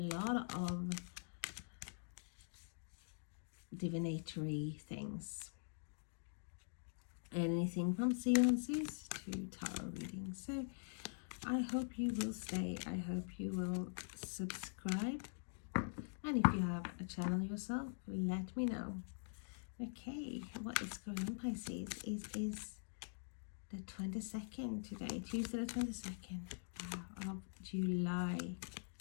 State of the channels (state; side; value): silent; right; digital silence